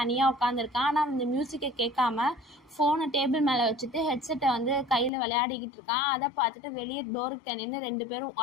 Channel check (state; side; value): drops out; right; at 5.1 s